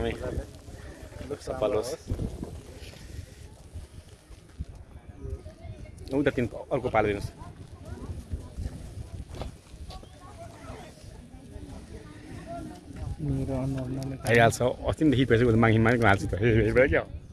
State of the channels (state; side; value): identical; both; correlation 1.00